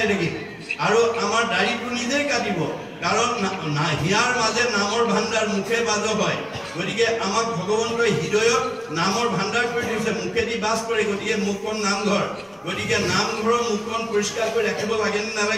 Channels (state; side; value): identical; both; correlation 1.00